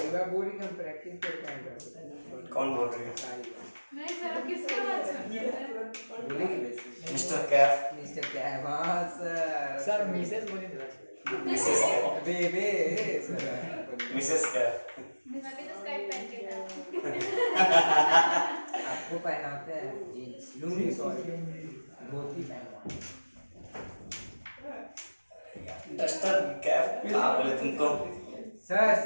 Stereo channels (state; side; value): inverted; both; correlation -1.00